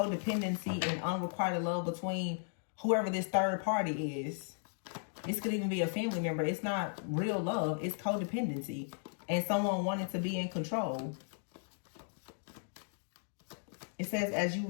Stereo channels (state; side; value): silent; right; digital silence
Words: and unrequited love between whoever this third party is. This could even be a family member. It's not real love. It's codependency. And someone wanting to be in control. It says, as you